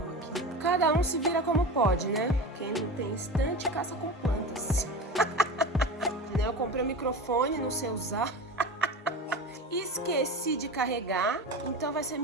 aqui. Cada um se vira como pode, né? Quem não tem estante, caça com plantas. Eu comprei o microfone, não sei usar. Esqueci de carregar, então vai ser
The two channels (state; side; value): normal; both; correlation 0.29